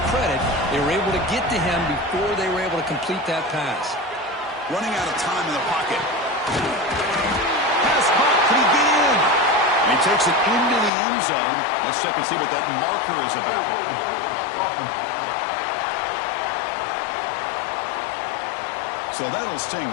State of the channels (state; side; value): drops out; right; at 10.9 s